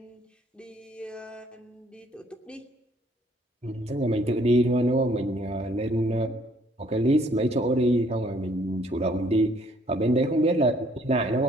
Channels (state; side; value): normal; both; correlation 0.63